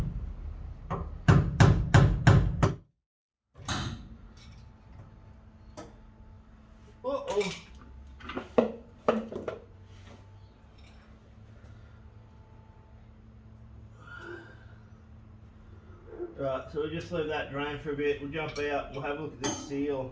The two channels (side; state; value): both; identical; correlation 1.00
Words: Uh-oh. Right, so we'll just leave that drain for a bit. We'll jump out, we'll have a look at this